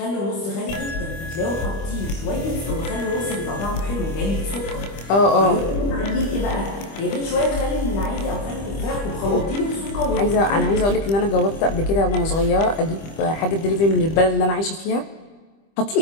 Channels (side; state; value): right; late; 25 ms